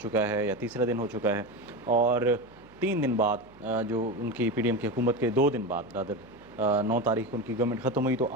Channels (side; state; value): right; noise; hum, 25 dB below the sound